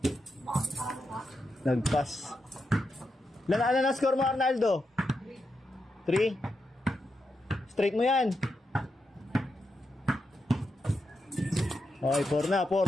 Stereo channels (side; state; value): both; normal; correlation 0.85